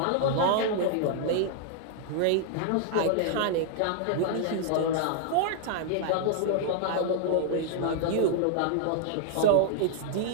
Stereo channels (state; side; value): different; both; correlation -0.01